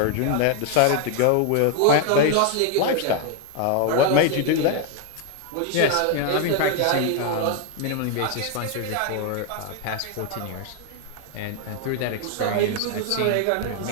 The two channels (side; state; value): both; different; correlation 0.00